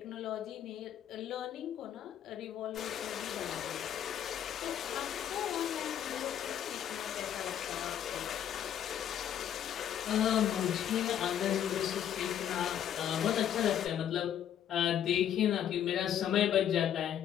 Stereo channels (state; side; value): quieter; right; 10.0 dB